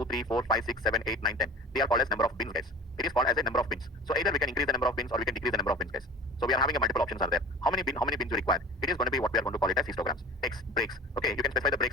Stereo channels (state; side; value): normal; both; correlation 0.38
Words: 3, 4, 5, 6, 7, 8, 9, 10. They are called as number of bins, guys. It is called as a number of bins. So either we can increase the number of bins or we can decrease the number of bins, guys. So we are having a multiple options are there. How many bins you require? It is going to be what we are going to call it as histograms. X breaks. Okay, you can specify the